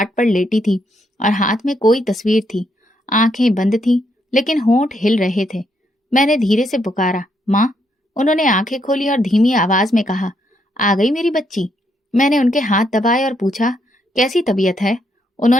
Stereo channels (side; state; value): both; normal; correlation 0.76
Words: पर लेटी थी और हाथ में कोई तस्वीर थी। आंखें बंद थी, लेकिन होंठ हिल रहे थे। मैंने धीरे से पुकारा, माँ। उन्होंने आंखें खोली और धीमी आवाज में कहा, आ गई मेरी बच्ची। मैंने उनके हाथ दबाए और पूछा, कैसी तबीयत है?